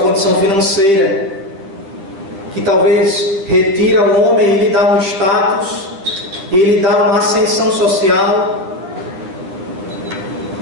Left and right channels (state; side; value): late; left; 10 ms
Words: condição financeira, que talvez retira o homem e lhe dá um status, e lhe dá uma ascensão social,